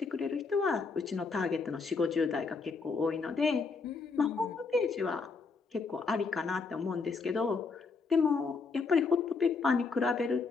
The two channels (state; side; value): quieter; right; 4.5 dB